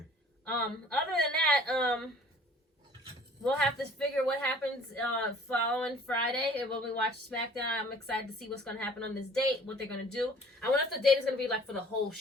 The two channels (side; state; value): both; normal; correlation 0.52